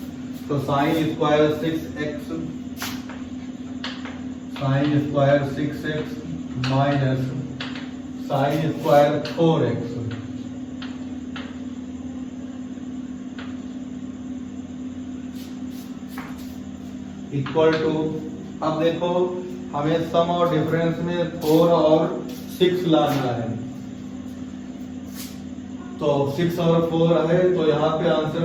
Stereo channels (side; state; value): both; identical; correlation 1.00